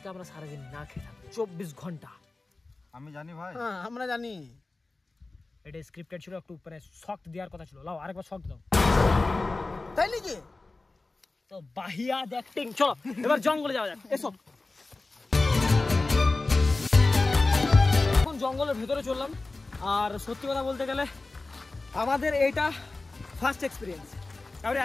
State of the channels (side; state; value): right; quieter; 3.3 dB